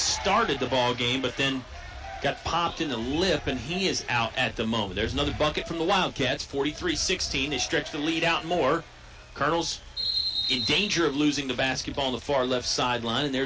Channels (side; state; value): both; identical; correlation 1.00